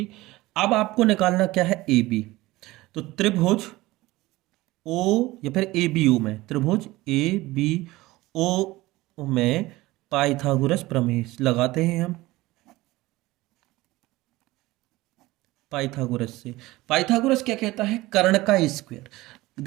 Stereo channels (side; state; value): left; quieter; 19.1 dB